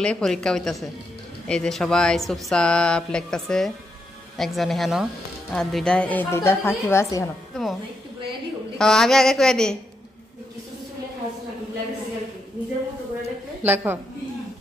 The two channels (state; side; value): normal; both; correlation 0.81